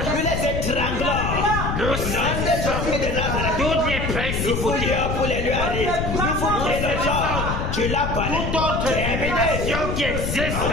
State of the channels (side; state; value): left; noise; rumble, 2 dB below the sound